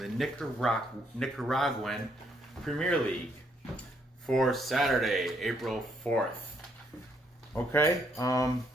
Nicaraguan Premier League for Saturday, April 4th. Okay,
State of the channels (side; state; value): both; normal; correlation 0.71